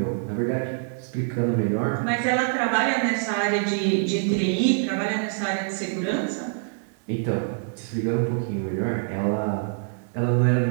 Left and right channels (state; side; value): silent; left; 62 dB below the other